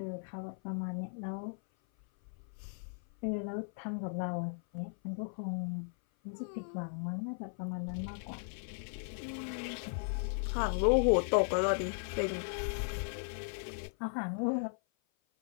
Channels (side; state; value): right; silent; 53 dB below the other